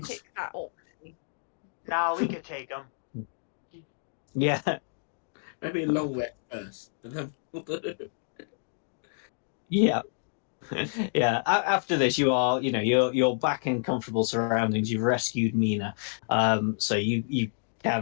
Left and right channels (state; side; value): silent; right; digital silence